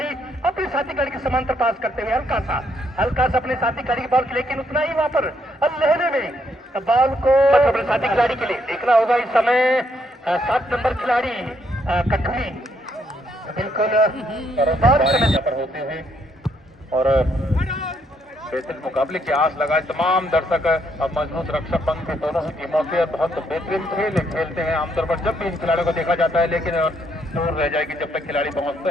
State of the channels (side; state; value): both; normal; correlation 0.73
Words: अपने साथी खिलाड़ी के समांतर पास करते हुए हल्का सा अपने साथी खिलाड़ी की बॉल, लेकिन उतना ही वहां पर लहरे में बॉल को अपने साथी खिलाड़ी के लिए देखना होगा। इस समय 7 नंबर खिलाड़ी कठुली बिल्कुल पर होते हुए और बेहतरीन मुकाबले की आस लगाए तमाम दर्शक। अब मजबूत रक्षक पंख थे दोनों ही टीमों के, बहुत बेहतरीन खेल खेलते हैं आमतौर पर जब भी इन खिलाड़ियों को देखा जाता है, लेकिन दूर रह जाएगी जब तक खिलाड़ी पहुंचते